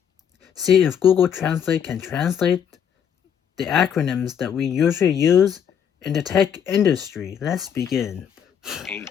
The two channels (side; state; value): right; quieter; 8.3 dB